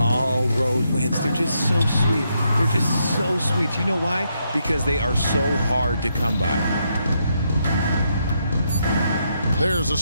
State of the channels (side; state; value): both; inverted; correlation -0.79